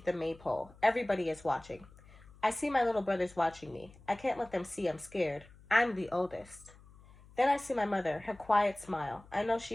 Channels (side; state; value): left; noise; hum, 23 dB below the sound